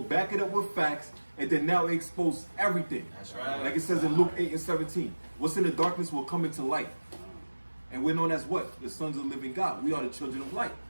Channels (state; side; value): inverted; both; correlation -1.00